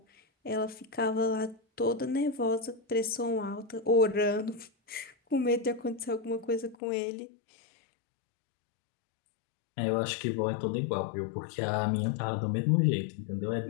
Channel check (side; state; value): right; drops out; at 6.8 s